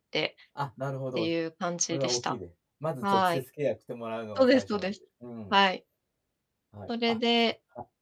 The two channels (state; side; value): identical; both; correlation 1.00